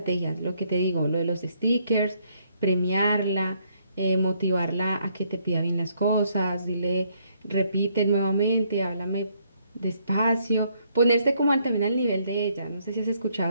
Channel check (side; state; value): both; inverted; correlation -0.71